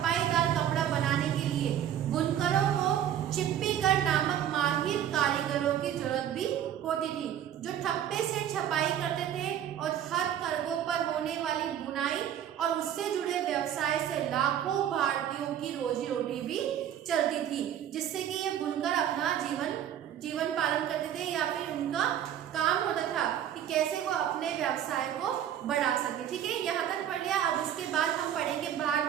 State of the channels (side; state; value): left; quieter; 10.3 dB